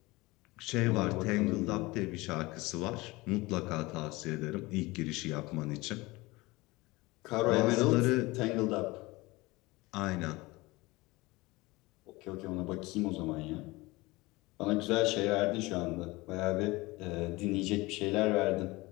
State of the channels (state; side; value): quieter; right; 21.9 dB